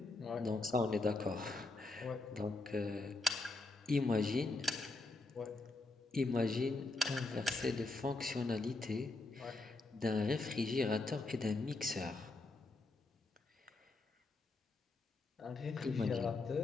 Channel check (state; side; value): quieter; right; 3.2 dB